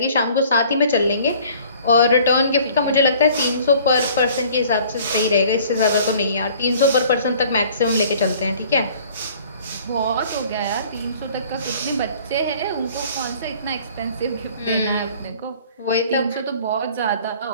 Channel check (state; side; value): inverted; both; correlation -0.52